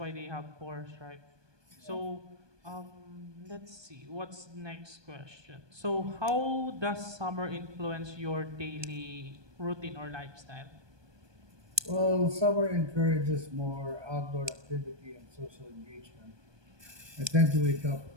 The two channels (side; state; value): left; late; 1.2 ms